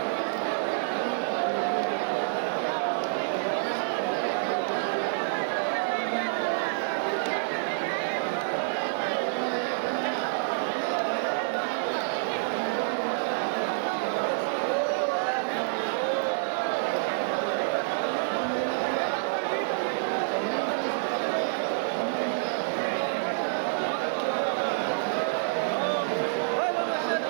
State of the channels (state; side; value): silent; left; 59 dB below the other